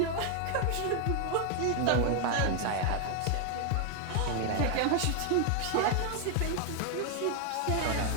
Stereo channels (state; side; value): different; both; correlation 0.01